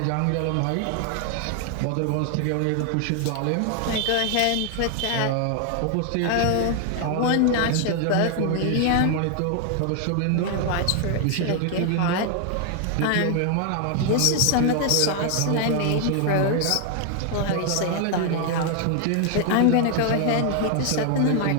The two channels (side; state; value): both; different; correlation 0.00